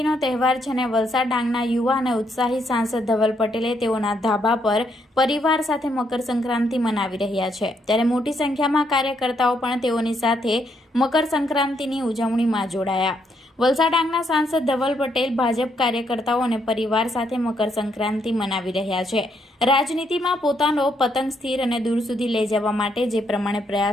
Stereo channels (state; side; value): normal; both; correlation 0.75